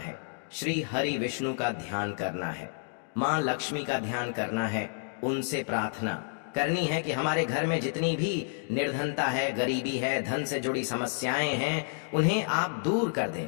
श्री हरि विष्णु का ध्यान करना है, माँ लक्ष्मी का ध्यान करना है, उनसे प्रार्थना करनी है कि हमारे घर में जितनी भी निर्धनता है, गरीबी है, धन से जुड़ी समस्याएं हैं, उन्हें आप दूर कर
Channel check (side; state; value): right; silent; 58 dB below the other